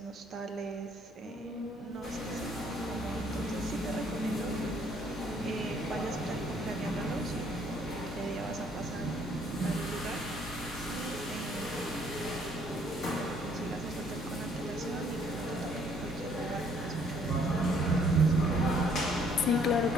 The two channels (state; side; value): normal; both; correlation 0.63